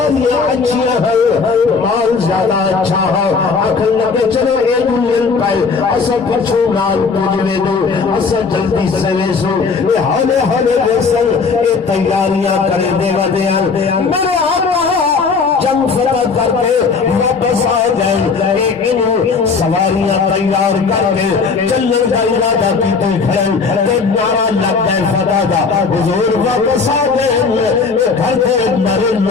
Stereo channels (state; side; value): quieter; right; 4.9 dB